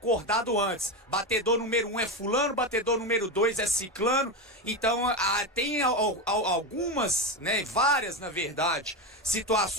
antes. Batedor número 1 é fulano, batedor número 2 é ciclano. Então, tem algumas, né, várias na verdade,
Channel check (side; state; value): both; normal; correlation 0.15